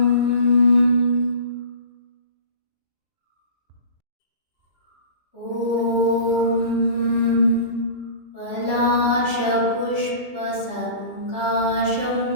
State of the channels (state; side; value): late; right; 2.9 ms